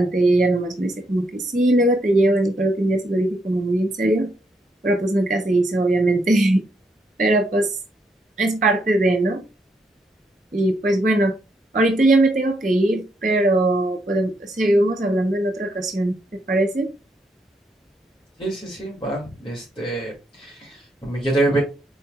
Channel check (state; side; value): normal; both; correlation 0.77